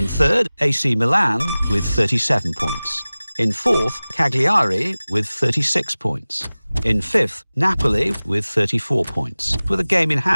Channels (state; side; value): inverted; both; correlation -0.98